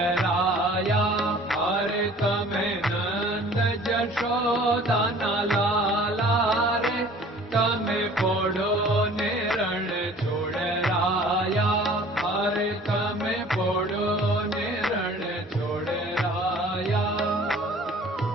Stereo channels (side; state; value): both; normal; correlation 0.49